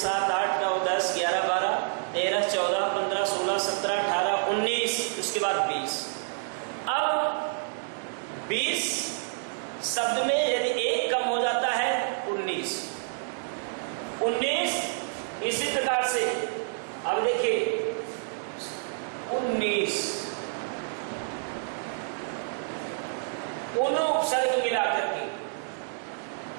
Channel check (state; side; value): silent; left; digital silence